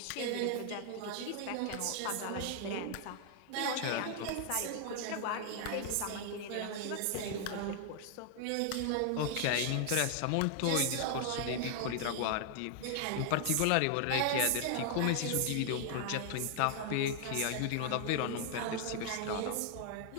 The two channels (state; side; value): different; both; correlation 0.00